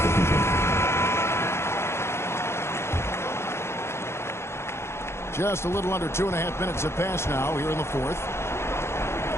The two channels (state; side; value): late; right; 0.12 ms